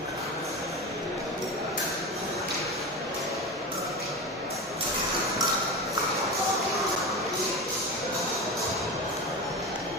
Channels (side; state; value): both; normal; correlation 0.24